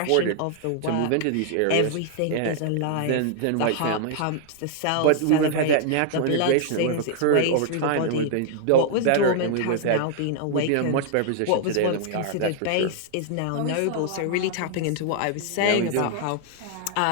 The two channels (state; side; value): different; both; correlation 0.00